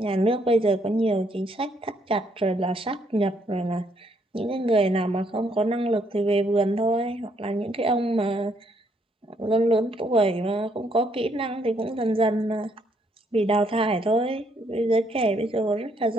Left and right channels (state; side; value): normal; both; correlation 0.71